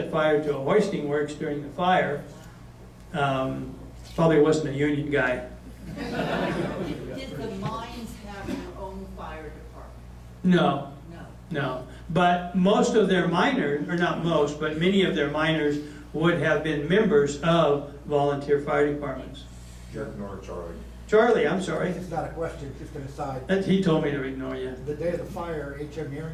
fire to a hoisting works during the fire. Probably wasn't a union guy. Did the mines have their own fire department? No. No. No, but most of their miners, or not most, but many of their miners would have been members of volunteer fire departments. Ignore Charlie. Charlie, I'm sorry. It's not a question, just an aside. He told me to ignore you. The day of the fire, H.M.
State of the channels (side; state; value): both; identical; correlation 1.00